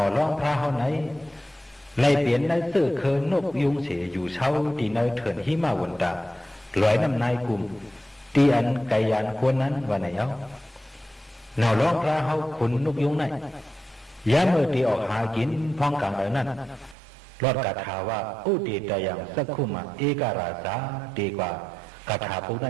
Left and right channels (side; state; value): left; drops out; at 16.9 s